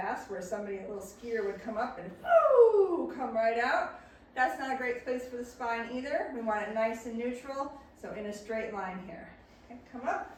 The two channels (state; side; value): identical; both; correlation 1.00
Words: where somebody, a little skier, would come up and whoo, come right out. That's not a great place for the spine either. We want it nice and neutral, so in a straight line here. Okay, come up.